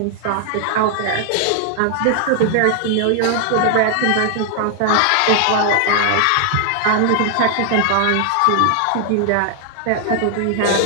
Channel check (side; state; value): both; different; correlation 0.00